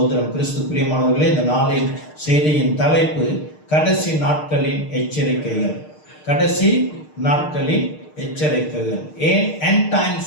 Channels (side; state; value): right; late; 6.6 ms